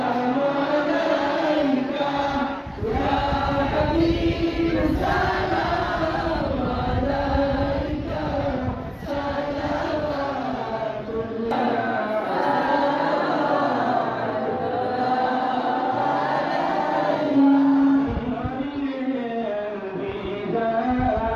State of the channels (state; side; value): identical; both; correlation 1.00